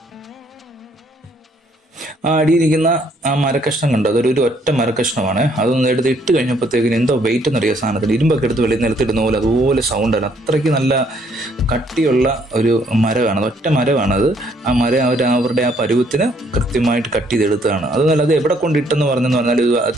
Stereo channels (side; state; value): both; normal; correlation 0.67